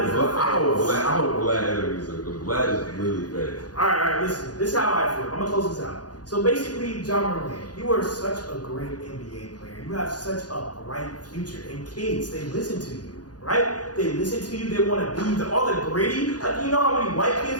hope Vlad is because Vlad is really better. All right, listen. This is how I feel. I'm gonna close this out. So basically, Ja Morant, you are such a great NBA player. You have such a bright future, and kids, they listen to you, right? They listen to you. They want to be all the gritty. Like, you know how many white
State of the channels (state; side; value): late; right; 0.69 ms